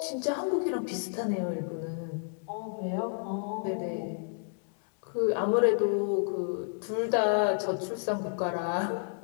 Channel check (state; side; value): silent; right; digital silence